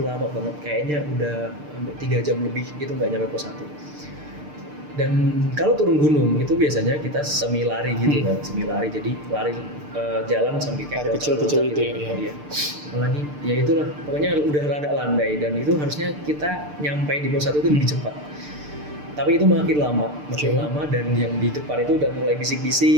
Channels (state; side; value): late; left; 6.7 ms